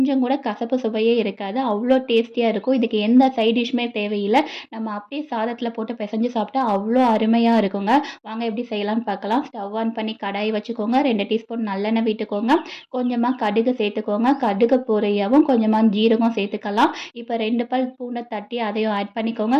கூட கசப்பு சுவையே இருக்காது. அவ்ளோ டேஸ்டியா இருக்கும். இதுக்கு எந்த சைட் டிஷ்மே தேவையில்ல. நம்ம அப்படியே சாதத்தில போட்டு பெசஞ்சு சாப்பிட்டா அவ்ளோ அருமையா இருக்குங்க. வாங்க எப்படி செய்யலாம்னு பார்க்கலாம். ஸ்டவ் ஆன் பண்ணி கடாய் வச்சுக்கோங்க. 2 டீஸ்பூன் நல்லெண்ணெய் விட்டுக்கோங்க. கொஞ்சமா கடுகு சேர்த்துக்கோங்க. கடுகு பொரியவும் கொஞ்சமா ஜீரகம் சேர்த்துக்கலாம். இப்போ 2 பல் பூண்டை தட்டி அதையும் ஆட் பண்ணிக்கோங்க.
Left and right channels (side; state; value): both; identical; correlation 1.00